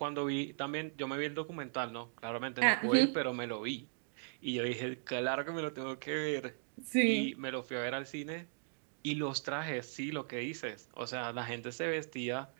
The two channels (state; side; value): silent; left; digital silence